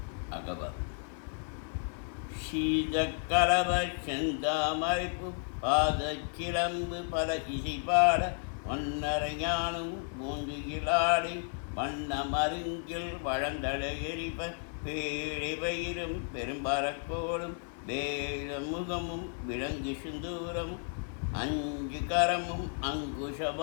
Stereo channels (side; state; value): right; silent; 56 dB below the other